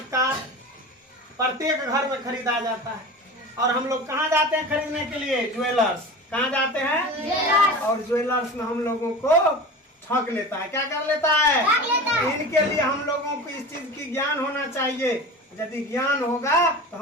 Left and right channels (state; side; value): normal; both; correlation 0.33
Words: का, प्रत्येक घर में खरीदा जाता है। और हम लोग कहाँ जाते हैं खरीदने के लिए? ज्वेलर्स। कहाँ जाते हैं? और ज्वेलर्स में हम लोगों को ठग लेता है। क्या कर लेता है? इनके लिए हम लोगों को इस चीज की ज्ञान होना चाहिए। यदि ज्ञान होगा तो